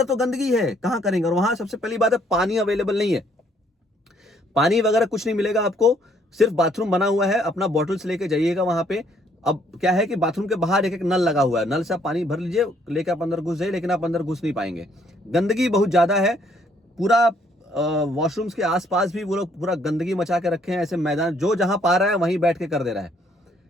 तो गंदगी है, कहां करेंगे। और वहां सबसे पहली बात है, पानी अवेलेबल नहीं है, पानी वगैरह कुछ नहीं मिलेगा आपको, सिर्फ बाथरूम बना हुआ है। अपना बॉटल्स लेके जाइएगा वहां पे। अब क्या है कि बाथरूम के बाहर एक नल लगा हुआ है, नल से आप पानी भर लीजिए, लेके आप अंदर घुस जाइए, लेकिन आप अंदर घुस नहीं पाएंगे। गंदगी बहुत ज्यादा है, पूरा वॉशरूम्स के आसपास भी वो लोग पूरा गंदगी मचा के रखे हैं। ऐसे मैदान जो जहां पा रहा है वहीं बैठ के कर दे रहा है।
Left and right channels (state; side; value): normal; both; correlation 0.66